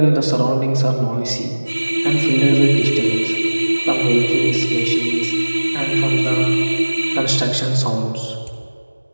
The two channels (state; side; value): inverted; both; correlation -1.00